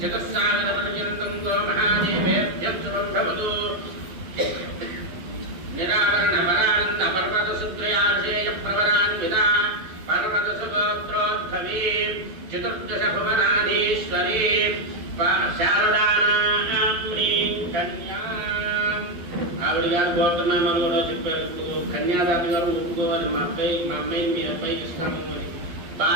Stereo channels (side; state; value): left; late; 12 ms